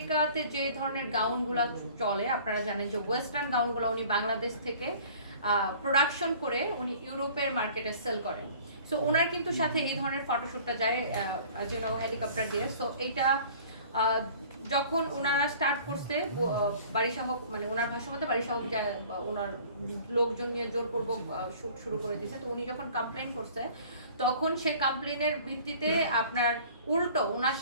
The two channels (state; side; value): inverted; both; correlation -0.48